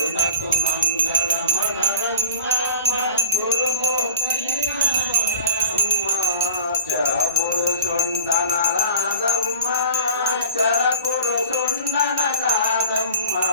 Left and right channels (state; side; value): inverted; both; correlation -0.41